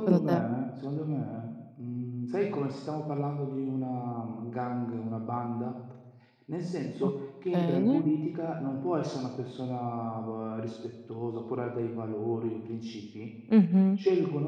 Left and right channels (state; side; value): identical; both; correlation 1.00